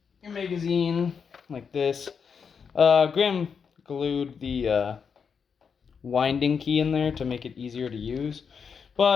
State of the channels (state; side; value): quieter; right; 6.3 dB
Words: Your magazine like this. Grim glued the winding key in there to make it easier to use,